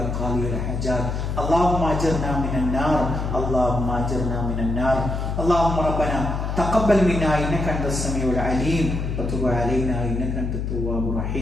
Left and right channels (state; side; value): noise; left; hum, 2 dB below the sound